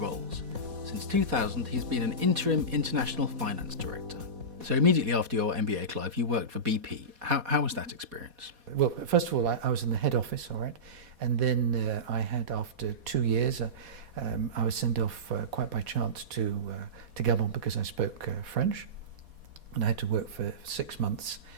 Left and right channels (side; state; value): left; late; 4.2 ms